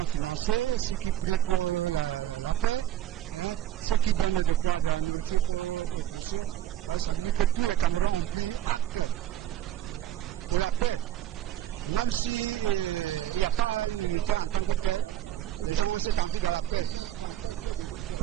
financé, ceux qui prient pour la paix, hein, ceux qui donnent de quoi, de la nourriture pour ceux. Ouais, ça veut dire que tous les Camerounais ont pris acte de la paix. Même s'il n'y a pas une unité en tant que telle, les gens ont cette envie de la paix.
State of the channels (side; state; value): left; quieter; 11.9 dB